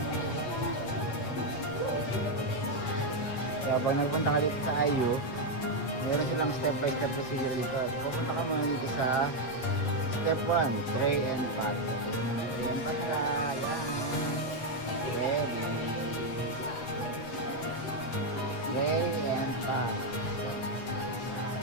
So, pag nagpunta ka dito sa IU, meron silang step by step procedure dito. So, papunta ka muna dito sa step 1, tray and pack. Ayan pa sila. Ayan. Ready. Tray and pack.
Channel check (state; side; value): late; right; 8.0 ms